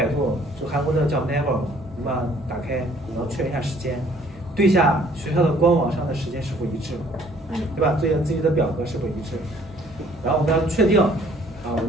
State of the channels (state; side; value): normal; both; correlation 0.59